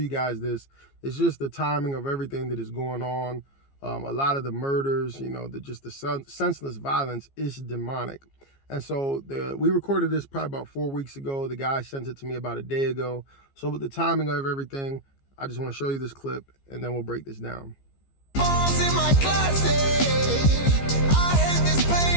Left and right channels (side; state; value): right; late; 15 ms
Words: guys this is just the timing of everything that is going on. A lot of the murders, you know, the senseless violence is demonic. And so we recorded this probably about 4 weeks ago. The guy sent it to me about a day ago. So with the timing of everything, I just want to show you this clip and then we'll break this down. Bombs in my closet. I hate this